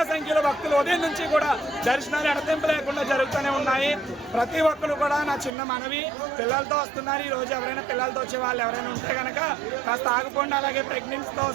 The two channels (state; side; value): drops out; left; at 5.5 s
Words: సంఖ్యలో భక్తులు ఉదయం నుంచి కూడా దర్శనాలు ఎడతెంపు లేకుండా జరుగుతూనే ఉన్నాయి. ప్రతి ఒక్కరు కూడా నా చిన్న మనవి, పిల్లలతో వస్తున్నారు. ఈ రోజు ఎవరైనా పిల్లలతో వచ్చే వాళ్ళు ఎవరైనా ఉంటే కనుక కాస్త ఆగిపోండి. అలాగే ప్రెగ్నెన్సీతో